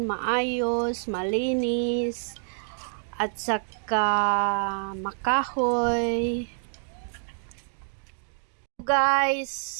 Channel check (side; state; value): left; silent; digital silence